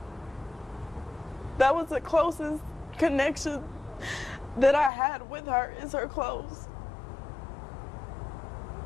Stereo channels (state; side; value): drops out; right; at 4.9 s